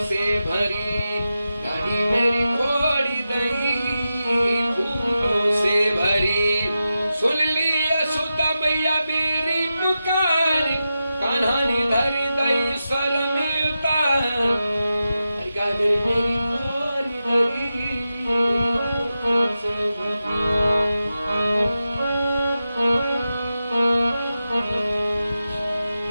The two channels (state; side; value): inverted; both; correlation -0.91